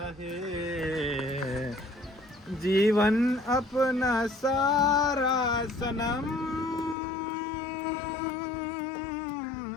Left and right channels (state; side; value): drops out; right; at 7.0 s